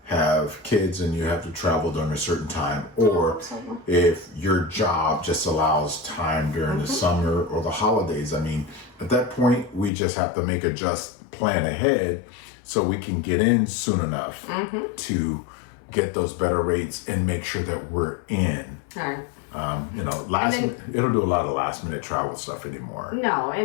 have kids and you have to travel during a certain time, or if your job just allows time during the summer or the holidays. I mean, at that point, we just have to plan ahead so we can get in soon enough to get those better rates and make sure that we're in. All right. It'll do a lot of last minute travel stuff anymore. No,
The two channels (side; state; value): right; drops out; at 9.9 s